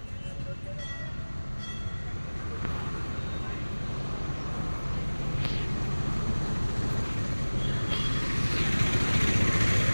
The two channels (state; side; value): inverted; both; correlation -1.00